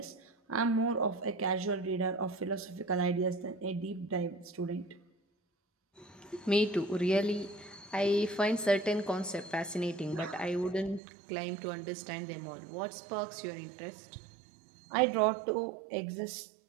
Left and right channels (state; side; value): drops out; left; at 11.0 s